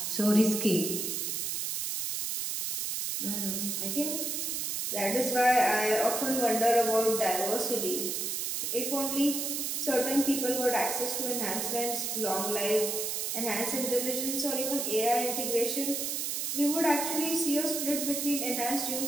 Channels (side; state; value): right; noise; hiss, 1 dB below the sound